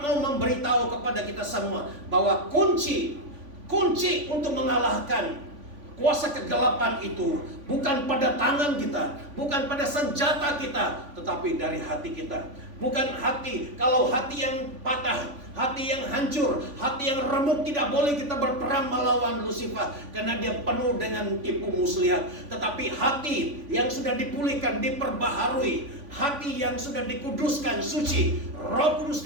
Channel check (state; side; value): late; left; 3.5 ms